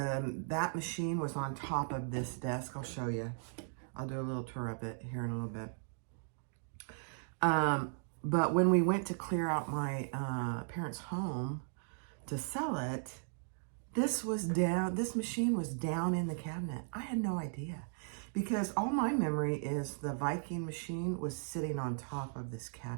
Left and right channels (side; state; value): left; silent; digital silence